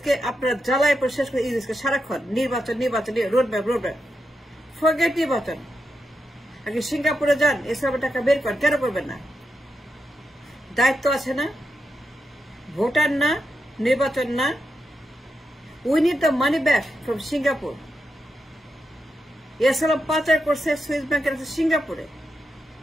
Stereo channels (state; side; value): normal; both; correlation 0.85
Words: আপনারা জ্বালায় পরে শেষ করে ইউনুসকে সারাক্ষণ নির্বাচন নির্বাচন, রোডম্যাপ। ফরগেট নির্বাচন। আগে সিঙ্গাপুরে যান, এসব টাকা বের করেন। কেন করবেন না? দায়িত্ব আছে না? ভোটার না, নির্বাচন না। We need the money back from Singapore. এসালাম পাচার করছে সুইস ব্যাংকের সিঙ্গাপুরে।